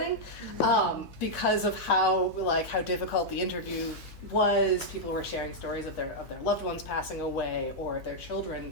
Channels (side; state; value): right; late; 5.2 ms